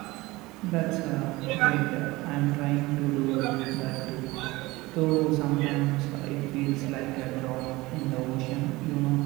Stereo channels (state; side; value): quieter; left; 20.8 dB